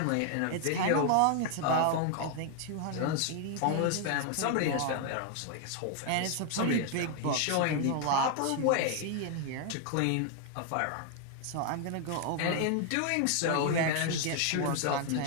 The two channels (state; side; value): different; both; correlation 0.00